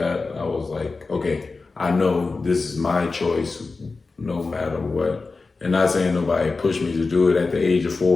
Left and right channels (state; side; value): quieter; right; 4.0 dB